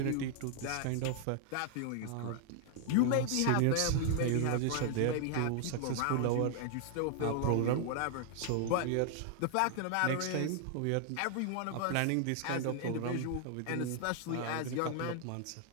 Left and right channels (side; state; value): both; different; correlation 0.00